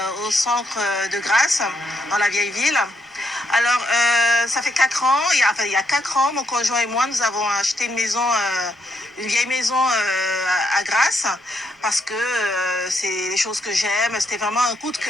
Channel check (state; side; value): normal; both; correlation 0.77